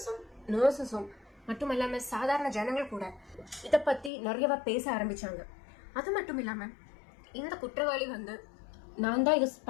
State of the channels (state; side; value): drops out; right; at 4.1 s